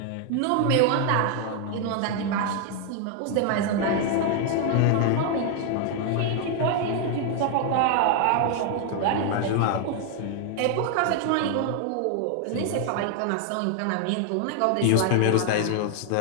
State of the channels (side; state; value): both; different; correlation 0.00